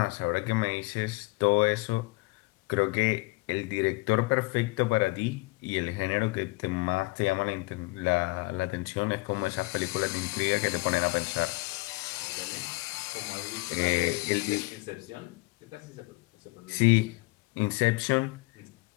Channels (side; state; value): right; quieter; 24.0 dB